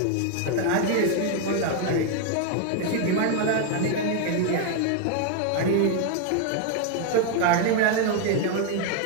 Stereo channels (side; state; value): both; different; correlation 0.01